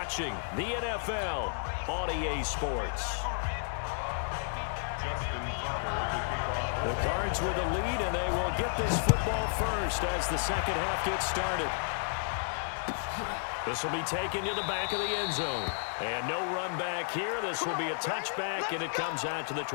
the NFL on EA Sports. The Cards with a lead, and they will get this football first as the second half gets started. This will be taken to the back of the end zone. And no run back here. This will be a touchback, and it comes out to the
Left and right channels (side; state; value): right; silent; digital silence